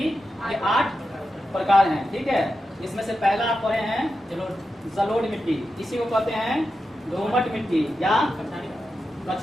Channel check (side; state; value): both; normal; correlation 0.89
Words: के 8 प्रकार हैं। ठीक है, इसमें से पहला आप पढ़े हैं जलोढ़ मिट्टी, इसी को कहते हैं दोमट मिट्टी या